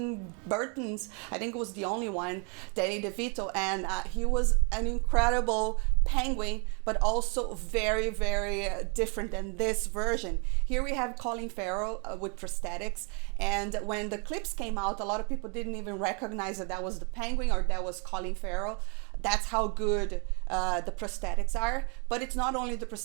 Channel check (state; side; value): quieter; left; 35.7 dB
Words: Burton's. I think it was the only one, Danny DeVito, and he was an incredible Penguin, but also very, very different than this version. Here we have Colin Farrell with prosthetics, and when the clips came out, a lot of people didn't even recognize that was the Penguin or that was Colin Farrell. That's how good the prosthetics are. But it's not only the